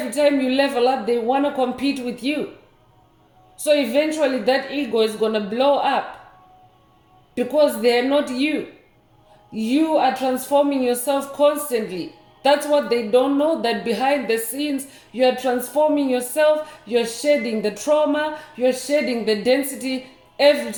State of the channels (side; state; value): both; identical; correlation 1.00